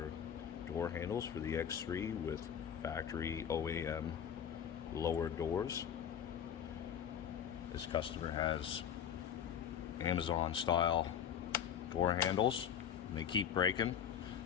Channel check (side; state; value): right; quieter; 8.7 dB